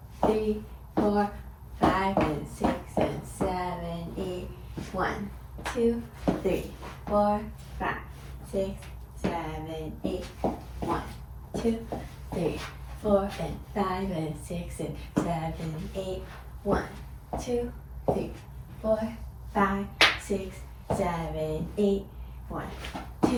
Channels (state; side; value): identical; both; correlation 1.00